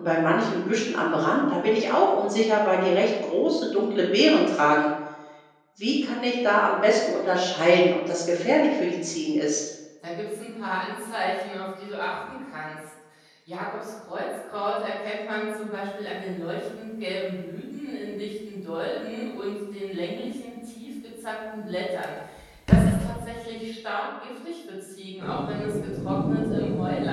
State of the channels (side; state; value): both; identical; correlation 1.00